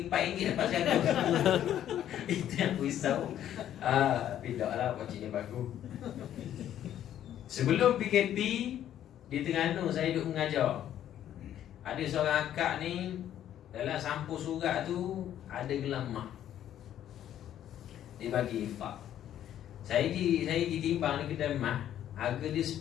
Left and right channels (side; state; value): right; quieter; 11.1 dB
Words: RM4 dapat saya. Itu yang aku risau. Tapi tak lah, pakcik ni bagus. Sebelum PKP di Terengganu saya duduk mengajar. Ada seorang akak ni, dalam sampul surat tu ada gelang emas. Dia bagi infak. Saya ditimbang di kedai emas, harga dia